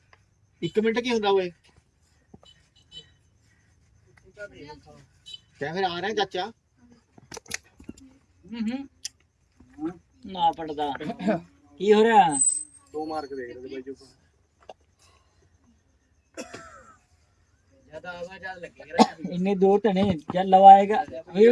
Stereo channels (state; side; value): identical; both; correlation 1.00